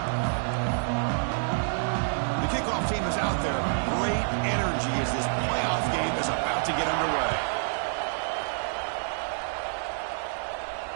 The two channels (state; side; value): silent; left; digital silence